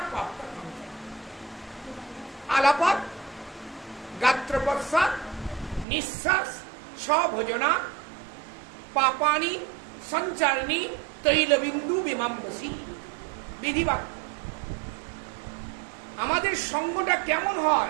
পাপটা সঞ্চারিত। আলাপাত, গাত্রপশ্চাৎ, নিঃশ্বাস, স্বভোজনা, পাপানি সঞ্চারিণী তৈলবিন্দু বিমাম্বসী। বিধিবাক্য। আমাদের সঙ্গটা কেমন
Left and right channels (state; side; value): drops out; left; at 5.9 s